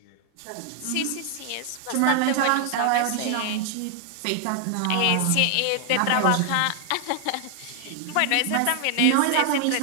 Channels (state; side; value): different; both; correlation 0.00